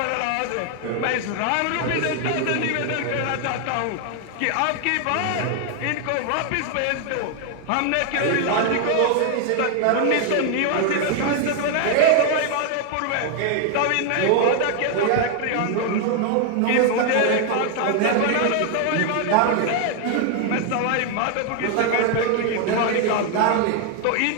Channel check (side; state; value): both; different; correlation 0.01